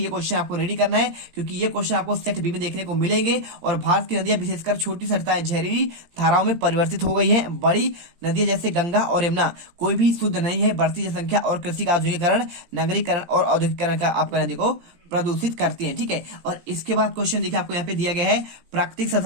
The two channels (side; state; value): left; late; 18 ms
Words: क्वेश्चन आपको रेडी करना है, क्योंकि ये क्वेश्चन आपको सेट बी में देखने को मिलेंगे। और भारत की नदियां विशेषकर छोटी सरिताएं जहरीली धाराओं में परिवर्तित हो गई है। बड़ी नदियां जैसे गंगा और यमुना कोई भी शुद्ध नहीं है। बढ़ती जनसंख्या और कृषि का आधुनिकीकरण, नगरीकरण और औद्योगिकरण का आपका नदी को प्रदूषित करती है। ठीक है, और इसके बाद क्वेश्चन देखिए आपको यहाँ पे दिया गया है प्राकृतिक